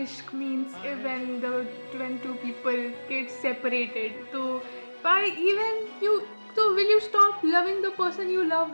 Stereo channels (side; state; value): both; inverted; correlation -1.00